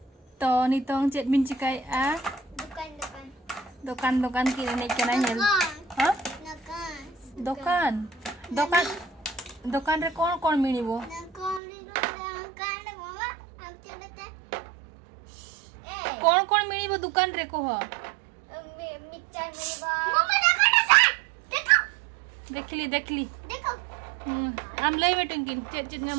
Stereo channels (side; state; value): left; drops out; at 11.6 s